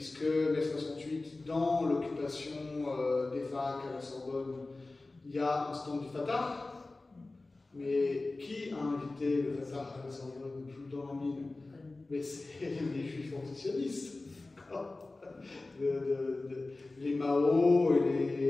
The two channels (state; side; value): quieter; right; 3.2 dB